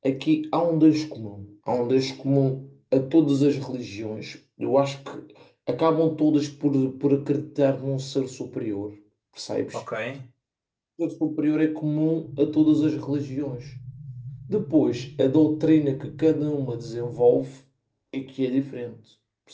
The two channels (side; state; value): both; identical; correlation 1.00